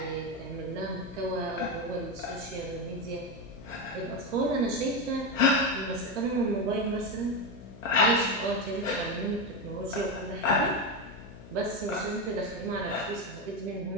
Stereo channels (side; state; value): left; noise; hum, 17 dB below the sound